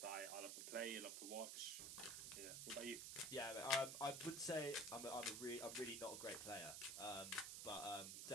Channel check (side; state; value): right; noise; hiss, 4 dB below the sound